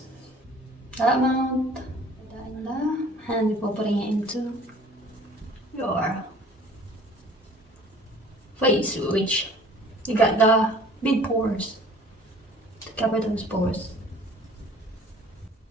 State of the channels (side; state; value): both; normal; correlation 0.50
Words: That amount, put that in there, and before putting it into your face, which you got the big pores to cover those pores.